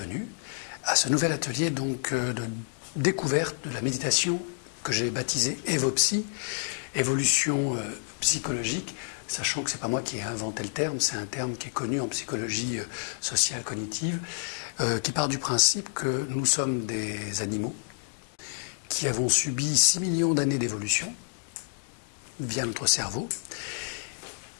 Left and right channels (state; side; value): silent; right; digital silence